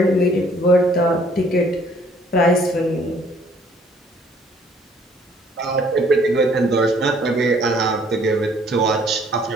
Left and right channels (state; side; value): normal; both; correlation 0.61